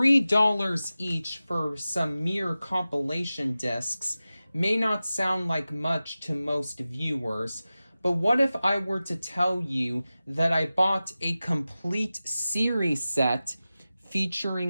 each for some mere compilation discs may not sound like much to most viewers, but what if I were to tell you that I bought a complete series set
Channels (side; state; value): both; inverted; correlation -0.95